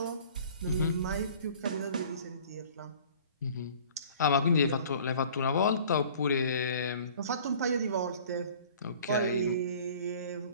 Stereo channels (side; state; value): both; inverted; correlation -0.48